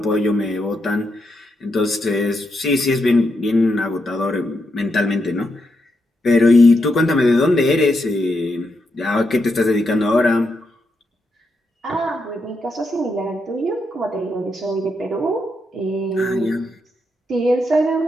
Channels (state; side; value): normal; both; correlation 0.82